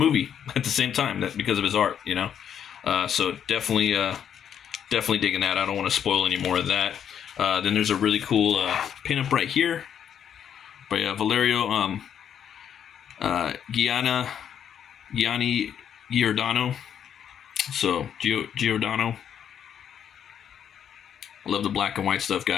at the same time, that because of his art, so definitely digging that. I don't want to spoil any more of that. Then there's a really cool pinup right here by Valerio Gianni Giordano. So Giordano. I love the black and white stuff,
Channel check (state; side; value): quieter; right; 8.8 dB